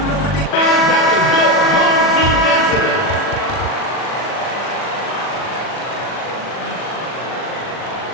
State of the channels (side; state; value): right; late; 40 ms